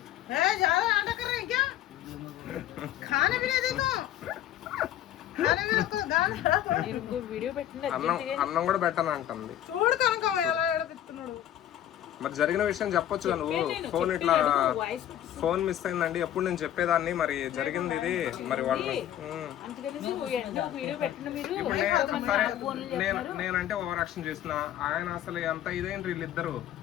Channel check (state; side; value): quieter; right; 11.8 dB